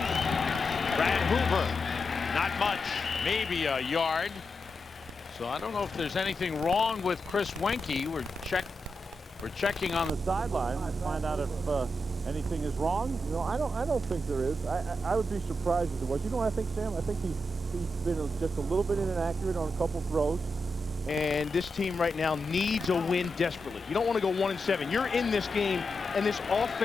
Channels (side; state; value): both; normal; correlation 0.87